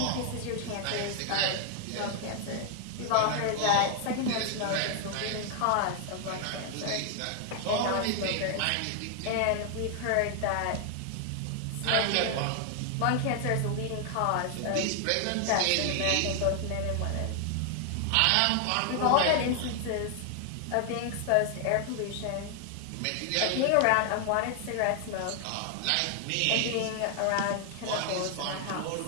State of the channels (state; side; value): different; both; correlation 0.00